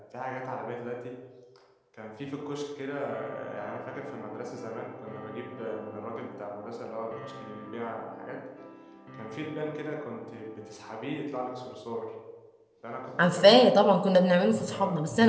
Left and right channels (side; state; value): both; identical; correlation 1.00